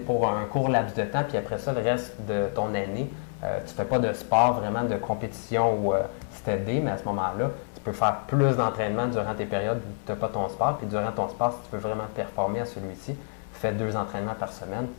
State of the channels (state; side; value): silent; right; digital silence